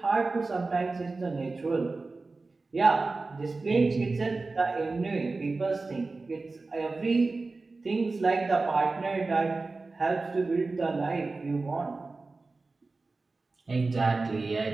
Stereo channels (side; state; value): left; quieter; 3.6 dB